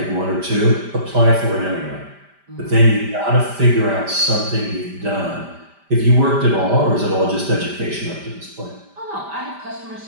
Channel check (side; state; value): left; late; 5.1 ms